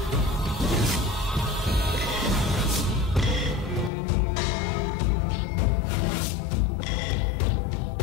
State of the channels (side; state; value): right; drops out; at 3.9 s